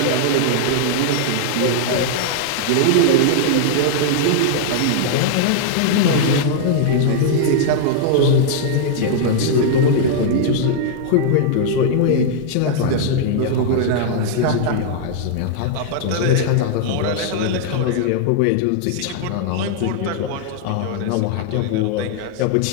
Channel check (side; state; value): both; different; correlation -0.01